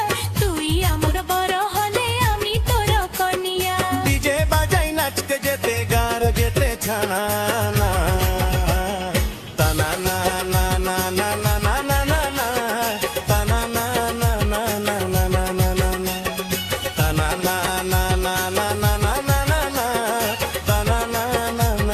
तुई आमर बर हले आमी तोर कनिया डीजे बाजाई नाचते जेते गार जेते छाना ना ताना ना ना ना ना ना ना ना ना ना ताना ना ना ना ना ना ना ना ना ना ताना ना ना ना ना ना ना ना ना ना ताना ना ना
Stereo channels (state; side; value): identical; both; correlation 1.00